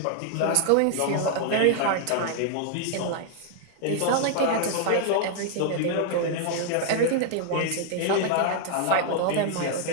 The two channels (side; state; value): both; different; correlation 0.00